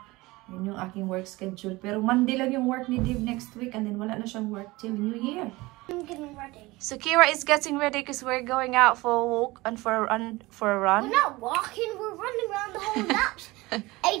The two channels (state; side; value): quieter; left; 21.2 dB